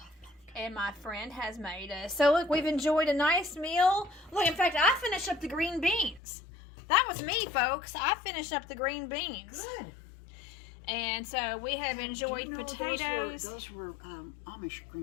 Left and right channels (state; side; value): drops out; right; at 6.2 s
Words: And my friend has made us. So look, we've enjoyed a nice meal. Look, in fact, I finished up the green beans. That was me, folks. I finished up the green beans. Good. And so we have enjoyed Do you know potatoes. Those were Amish